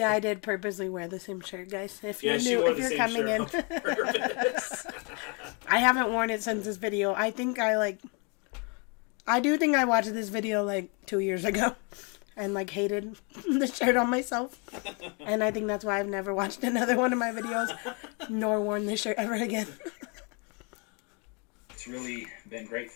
I did purposely wear the same shirt, guys. If Yeah, you she knew, wore if the you're same coming in. shirt on purpose. I haven't worn it since this video. I think I do think I watched this video like 2 years ago and like hated the shirt on myself. And I think that's why I've never watched another one of my videos nor worn this shirt ever again. it's really been great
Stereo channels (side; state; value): right; quieter; 34.0 dB